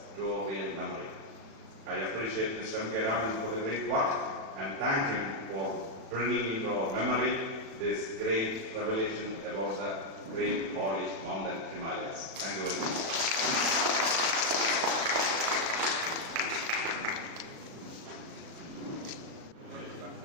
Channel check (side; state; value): left; late; 36 ms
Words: to our real memory. I appreciate Mr. M.K. Raman for the great work and thank him for bringing into our memory this great revelation about the great holy mountain Himalayas. Thank you very much.